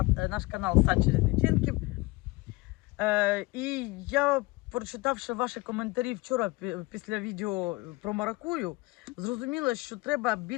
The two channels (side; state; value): right; quieter; 23.2 dB